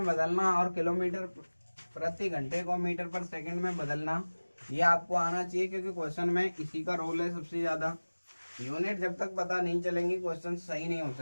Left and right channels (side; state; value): both; inverted; correlation -1.00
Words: बदलना और किलोमीटर प्रति घंटे को मीटर पर सेकंड में बदलना, ये आपको आना चाहिए, क्योंकि क्वेश्चन में इसी का रोल है सबसे ज्यादा। यूनिट जब तक पता नहीं चलेंगी क्वेश्चन सही नहीं हो